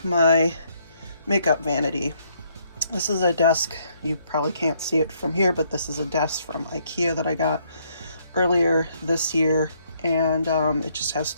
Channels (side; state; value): both; inverted; correlation -0.70